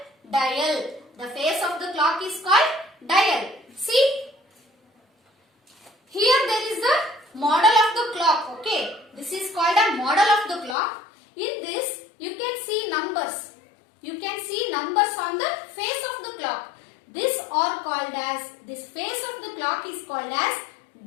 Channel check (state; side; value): drops out; right; at 10.8 s